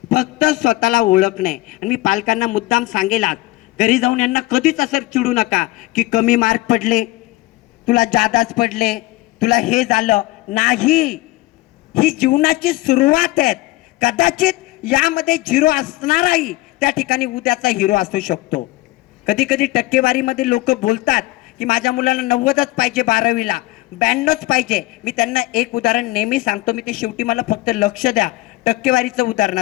फक्त स्वतःला ओळखणे. आणि मी पालकांना मुद्दाम सांगेल, आज घरी जाऊन यांना कधीच असं चिडू नका की कमी मार्क पडले, तुला जादाच पडले, तुला हे झालं नाही. ही जीवनाची सुरुवात आहे. कदाचित यामध्ये झिरो असणाराही त्या ठिकाणी उद्याचा हिरो असू शकतो. कधी कधी टक्केवारीमध्ये लोक बोलतात की माझ्या मुलाला 90च पाहिजे, 12वीला 92च पाहिजे. मी त्यांना एक उदाहरण नेहमी सांगतो, मी ते शेवटी मला फक्त लक्ष द्या टक्केवारीचं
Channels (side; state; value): right; quieter; 19.0 dB